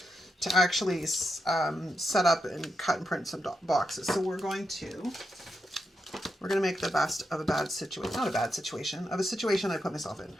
to actually set up and cut and print some boxes. So we're going to make the best of a bad situation. Not a bad situation, of a situation I put myself in.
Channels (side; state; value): both; normal; correlation 0.85